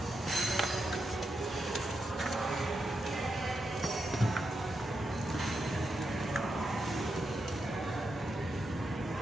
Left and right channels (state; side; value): normal; both; correlation 0.85